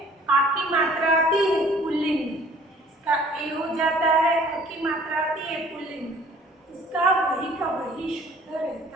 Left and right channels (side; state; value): both; normal; correlation 0.54